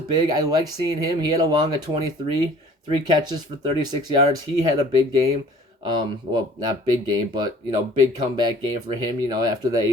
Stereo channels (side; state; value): both; normal; correlation 0.51